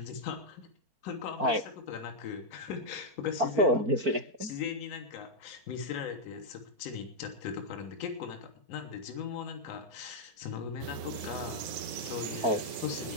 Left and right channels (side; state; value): left; late; 4.5 ms